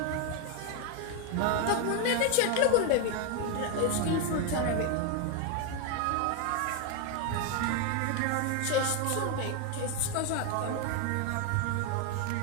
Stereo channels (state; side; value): different; both; correlation 0.01